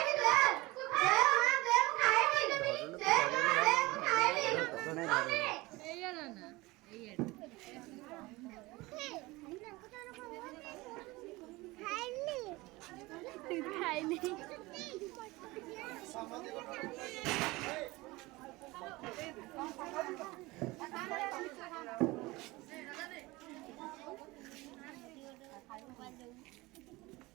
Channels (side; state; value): left; quieter; 21.5 dB